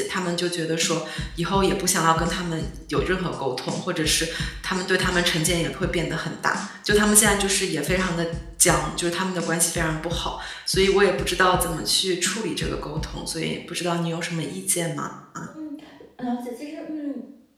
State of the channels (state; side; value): identical; both; correlation 1.00